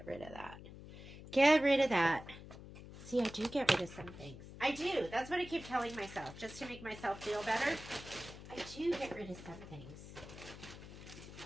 rid of that. Get rid of that. See, I do get rid of some things. I do. That's what I keep telling myself, just to make myself feel better. I do get rid of some things.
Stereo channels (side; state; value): left; noise; hum, 14 dB below the sound